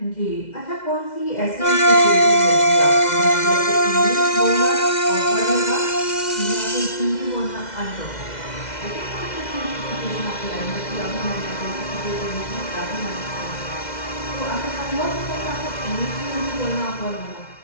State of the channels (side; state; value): right; late; 2.1 ms